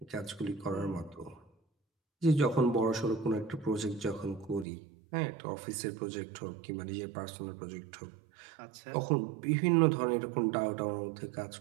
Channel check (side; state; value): left; drops out; at 4.7 s